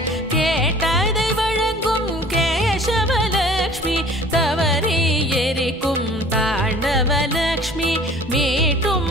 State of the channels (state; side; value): normal; both; correlation 0.49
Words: கேட்டதை வழங்கும் கேசவ லக்ஷ்மி தவறி எரிக்கும் தாண்டவ லக்ஷ்மி